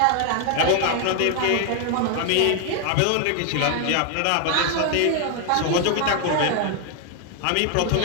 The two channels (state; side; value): different; both; correlation 0.00